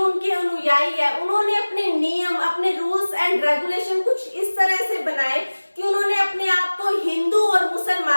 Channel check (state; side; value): inverted; both; correlation -1.00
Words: उनके अनुयायी है उन्होंने अपने नियम, अपने रूल्स एंड रेगुलेशन कुछ इस तरह से बनाए कि उन्होंने अपने आप को हिंदू और